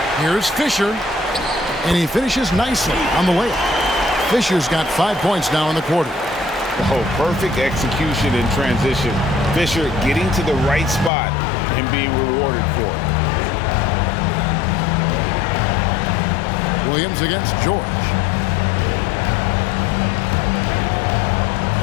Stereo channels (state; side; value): drops out; right; at 11.1 s